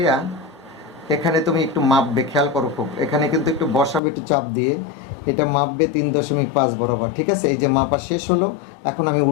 এখানে তুমি একটু মাপবে, খেয়াল করো খুব, এখানে কিন্তু একটু বসাবে একটু চাপ দিয়ে, এটা মাপবে 3.5 বরাবর। ঠিক আছে, এই যে মাপা শেষ হলো, এখন আমি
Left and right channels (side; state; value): right; drops out; at 4.0 s